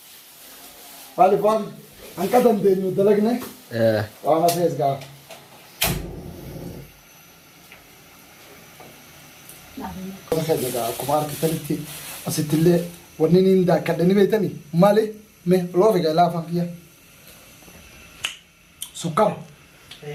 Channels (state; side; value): identical; both; correlation 1.00